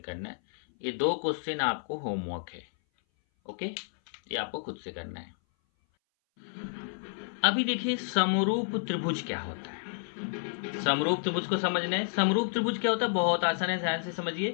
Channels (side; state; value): right; silent; 58 dB below the other